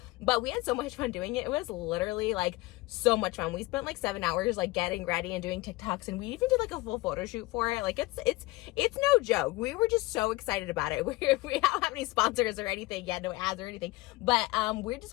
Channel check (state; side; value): quieter; right; 21.1 dB